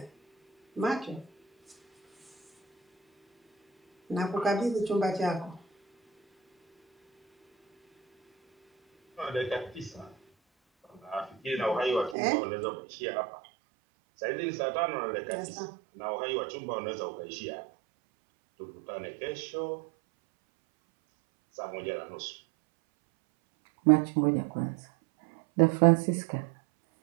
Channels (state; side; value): drops out; left; at 12.2 s